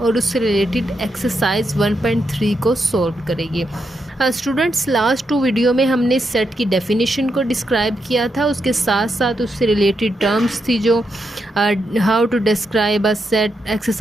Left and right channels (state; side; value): normal; both; correlation 0.83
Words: उससे रिलेटेड एक्सरसाइज 1.3 को सॉल्व करेंगे। स्टूडेंट्स लास्ट 2 वीडियो में हमने सेट की डेफिनेशन को डिस्क्राइब किया था, उसके साथ साथ उससे रिलेटेड टर्म्स थी जो how to describe a set,